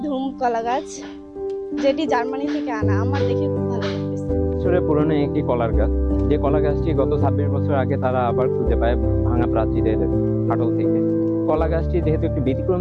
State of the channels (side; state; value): both; identical; correlation 1.00